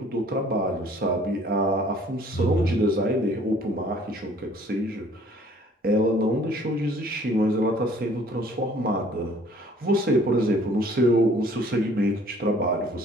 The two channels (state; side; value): normal; both; correlation 0.55